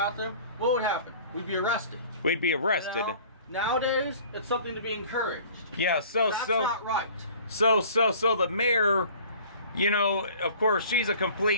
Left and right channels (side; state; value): both; inverted; correlation -0.48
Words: what would happen? We'd be arrested. We'd be arrested. You know? Nowadays, it's something to be encouraged. Yeah, That's not right. So the mayor, you know, of course, she's a